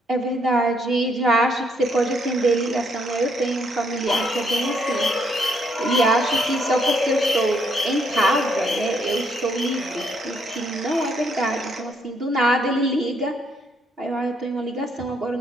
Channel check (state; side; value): normal; both; correlation 0.72